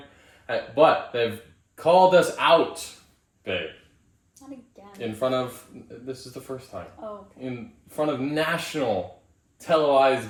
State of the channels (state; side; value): identical; both; correlation 1.00